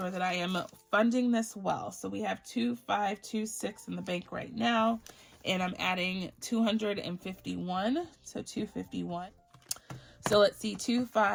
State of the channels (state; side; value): identical; both; correlation 1.00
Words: that I am funding this well. So we have 2526 in the bank right now, and I'm adding 251, so 251. So let's see,